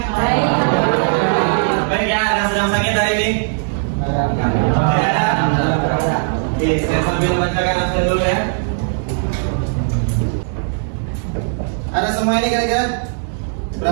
Baik. Baik ya, ada sedang sakit hari ini? Tidak ada? Oke, saya sambil bacakan absen dulu ya. Ada semua ini kira-kira?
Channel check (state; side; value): silent; left; digital silence